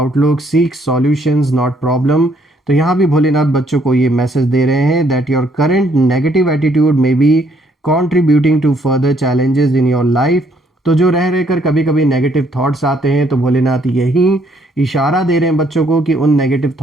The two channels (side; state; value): both; normal; correlation 0.68